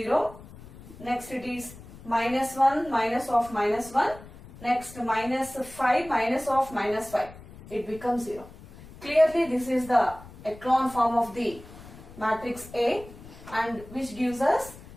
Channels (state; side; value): noise; left; rumble, 18 dB below the sound